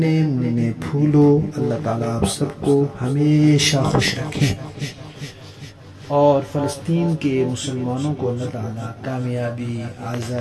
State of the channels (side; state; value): both; identical; correlation 1.00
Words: منھے پھولوں، اللہ تعالیٰ آپ سب کو ہمیشہ خوش رکھیں اور فلسطین کے مسلمانوں کو اللہ تعالیٰ کامیابی،